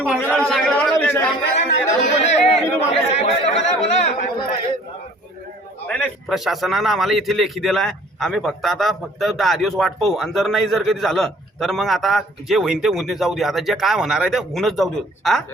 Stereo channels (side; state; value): both; normal; correlation 0.53